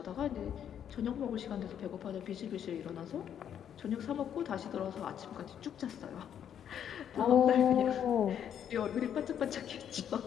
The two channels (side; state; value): right; quieter; 9.2 dB